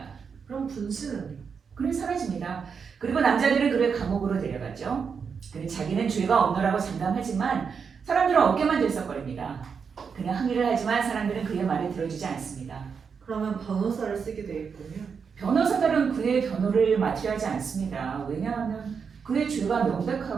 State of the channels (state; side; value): quieter; left; 6.1 dB